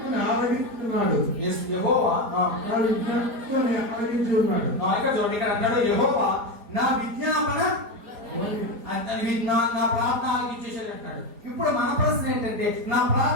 ఆలకిస్తున్నాడు. యెహోవా నా విజ్ఞప్తిని ఆలకించున్నాడు. ఇక్కడ చూడండి, ఇక్కడ అన్నాడు యెహోవా నా విజ్ఞాపన నా ప్రార్థన ఆలకించేసాడు అంటాడు. ఇప్పుడు మన ప్రశ్న ఏంటంటే నా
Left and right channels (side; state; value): left; late; 5.0 ms